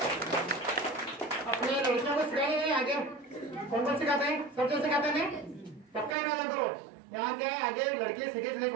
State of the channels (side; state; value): left; drops out; at 6.2 s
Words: अपने लड़कियों को सिखाए नहीं आगे कौन कौन सिखाते हैं? सब जो सिखाते हैं पक्का इरादा करो यहाँ के आगे लड़के सीखे नहीं